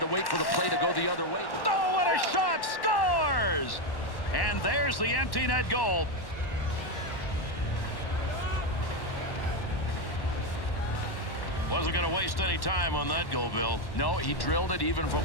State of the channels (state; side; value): late; right; 1.1 ms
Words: wait for the play to go the other way. Oh, what a shot. Scores! And there's the empty net goal. Wasn't going to waste any time on that goal, Bill. No, he drilled it even